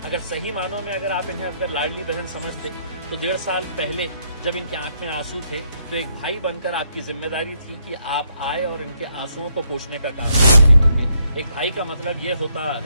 अगर सही मानों में अगर आप इन्हें अगर लाडली बहन समझते तो 1.5 साल पहले जब इनके आंख में आंसू थे तो एक भाई बनकर आपकी जिम्मेदारी थी कि आप आए और इनके आंसुओं को पोंछने का काम करें। एक भाई का मतलब ये होता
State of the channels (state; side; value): inverted; both; correlation -0.74